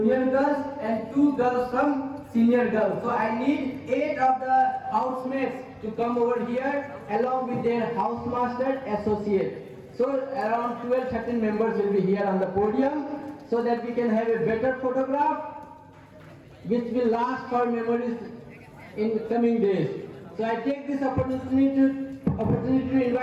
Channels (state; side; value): identical; both; correlation 1.00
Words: girls, and 2 girls from senior girls. So I need 8 of the housemates to come over here along with their housemaster associate. So around 12-13 members will be here on the podium, so that we can have a better photograph which will last for memories in coming days. So I take this opportunity to